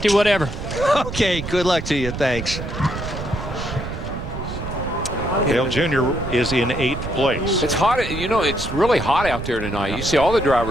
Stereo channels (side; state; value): right; noise; rumble, 7 dB below the sound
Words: whatever. Okay, good luck to you. Thanks. Dale Jr. is in 8th place. It's hot. You know, it's really hot out there tonight. You see all the